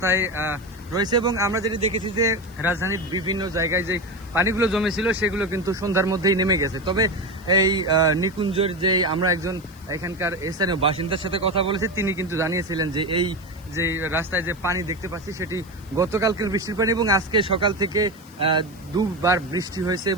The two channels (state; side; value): noise; left; hiss, 26 dB below the sound